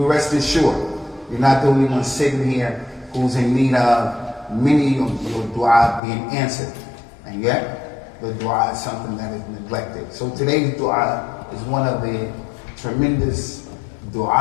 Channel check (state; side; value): drops out; right; at 6.0 s